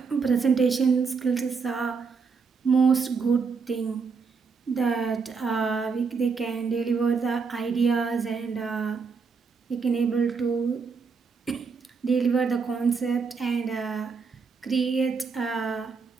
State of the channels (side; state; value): left; quieter; 5.2 dB